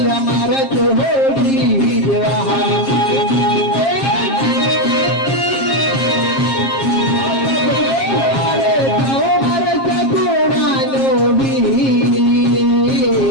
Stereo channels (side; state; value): right; late; 7.4 ms